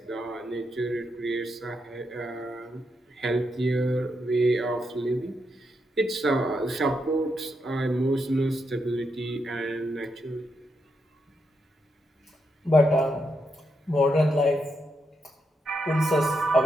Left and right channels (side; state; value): both; normal; correlation 0.82